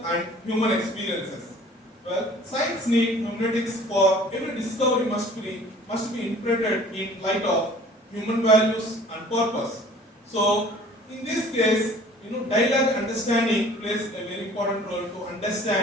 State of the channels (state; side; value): normal; both; correlation 0.50